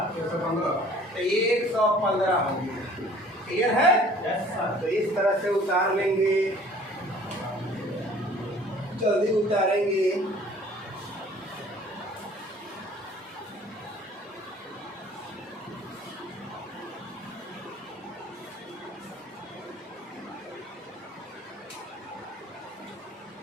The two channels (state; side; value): normal; both; correlation 0.51